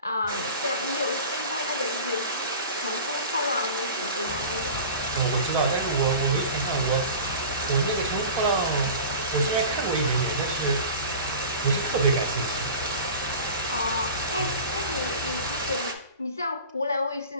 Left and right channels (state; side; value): inverted; both; correlation -0.36